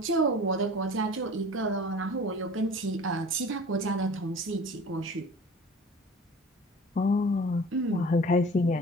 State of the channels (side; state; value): both; normal; correlation 0.42